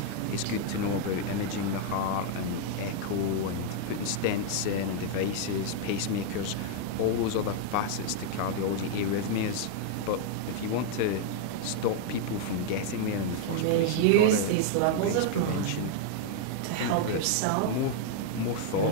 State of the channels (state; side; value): different; both; correlation 0.00